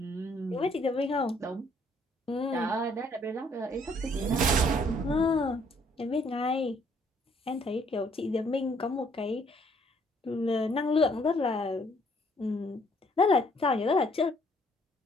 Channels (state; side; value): normal; both; correlation 0.65